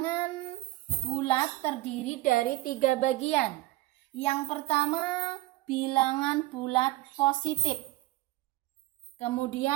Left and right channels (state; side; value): quieter; left; 18.2 dB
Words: bulat terdiri dari 3 bagian. Yang pertama bilangan bulat positif.